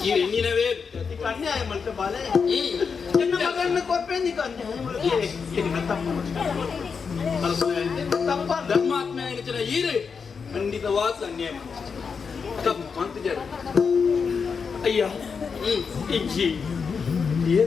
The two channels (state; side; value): quieter; right; 5.7 dB